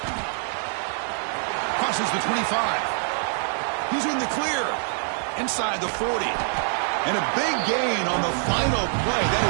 Crosses the 25. He's in the clear. Inside the 40. And a big gain on the final play. That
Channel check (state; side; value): silent; left; 62 dB below the other